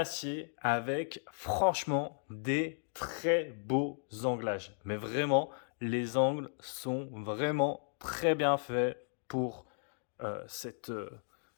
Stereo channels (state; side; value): silent; right; digital silence